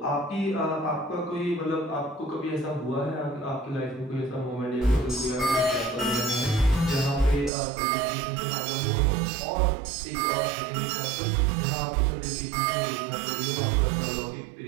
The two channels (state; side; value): drops out; left; at 7.5 s